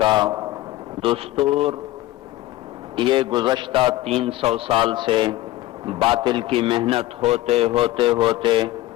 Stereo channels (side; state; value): right; quieter; 16.6 dB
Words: کا دستور یہ گزشتہ 300 سال سے باطل کی محنت ہوتے ہوتے ہوتے